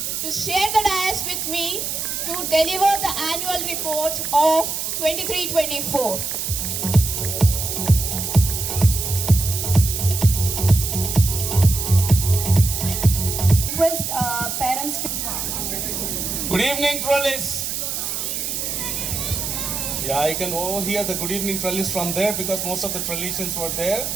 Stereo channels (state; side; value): noise; right; hiss, 3 dB below the sound